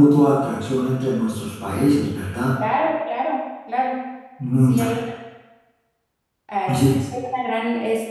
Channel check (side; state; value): both; identical; correlation 1.00